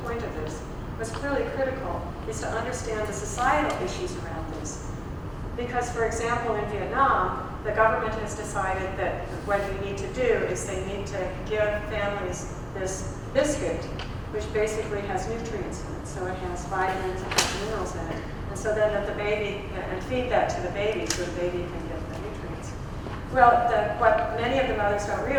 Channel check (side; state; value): both; identical; correlation 1.00